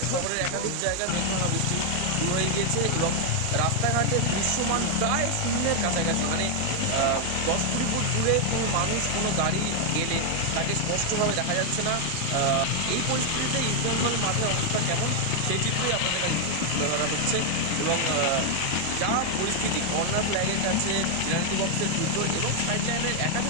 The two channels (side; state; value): both; different; correlation 0.00